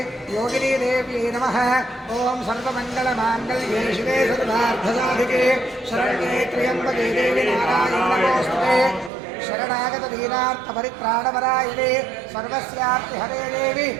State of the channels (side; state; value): left; drops out; at 9.1 s